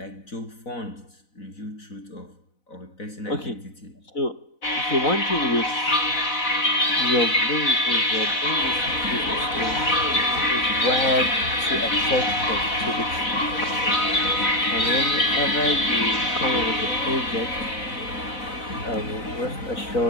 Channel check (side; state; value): right; late; 4.0 ms